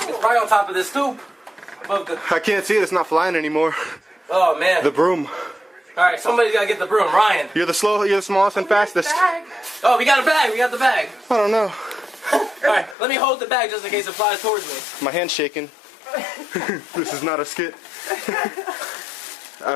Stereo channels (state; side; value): drops out; right; at 13.0 s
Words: probably on top of this stoop. Above the... I can't see it. It's not flying anymore. Oh, man. The broom. Alright, somebody's gotta get the broom. Ryan. You're the smallest and fastest. Oh, we got a bag. We got the bag. I don't know. Alright, let me hold the bag just in case it flies towards me. My hand's shaking. This is not a skit.